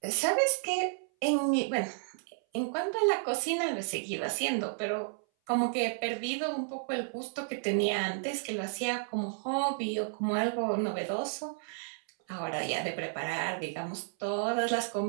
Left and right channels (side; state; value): left; silent; 56 dB below the other